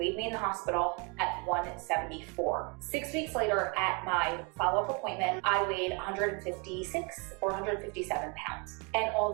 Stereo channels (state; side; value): quieter; left; 32.4 dB